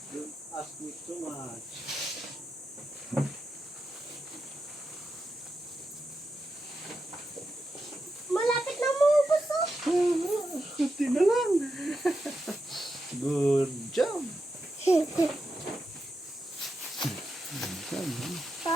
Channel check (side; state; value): both; normal; correlation 0.87